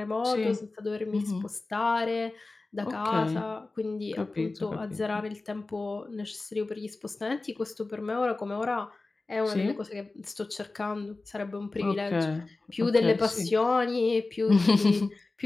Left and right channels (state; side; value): quieter; right; 3.4 dB